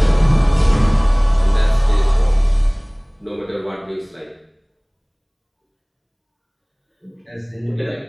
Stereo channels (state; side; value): identical; both; correlation 1.00